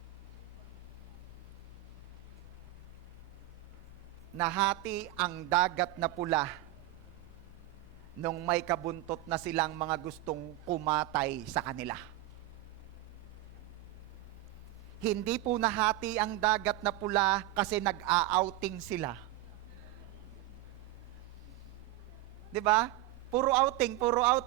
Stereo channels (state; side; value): quieter; left; 15.9 dB